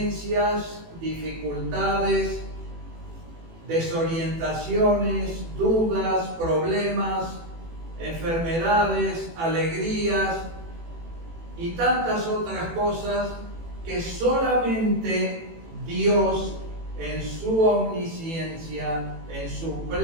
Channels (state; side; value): late; left; 18 ms